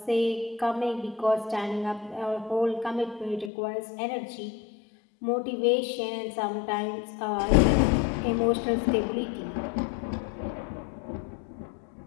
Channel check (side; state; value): right; drops out; at 3.5 s